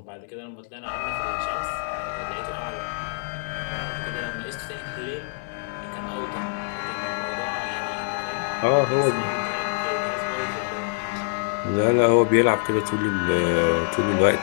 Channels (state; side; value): silent; right; digital silence